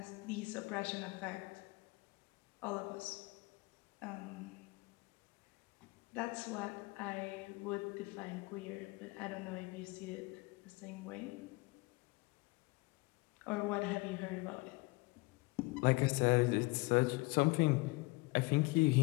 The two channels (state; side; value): quieter; right; 25.2 dB